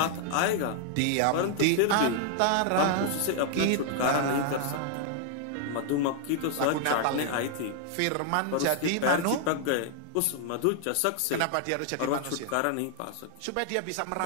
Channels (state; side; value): different; both; correlation 0.00